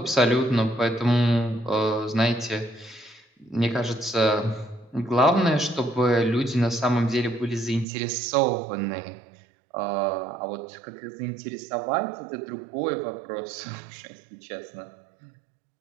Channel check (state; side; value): drops out; left; at 7.9 s